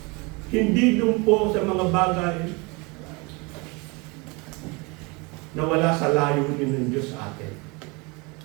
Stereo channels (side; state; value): left; quieter; 27.9 dB